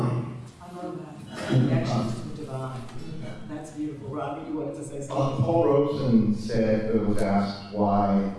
I love that. Connection to the divine. That's beautiful. Rodney, you wanted to say something? Paul Robeson was asked why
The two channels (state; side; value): identical; both; correlation 1.00